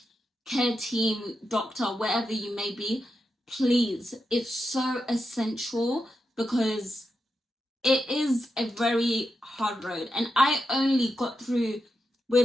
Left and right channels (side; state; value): both; normal; correlation 0.87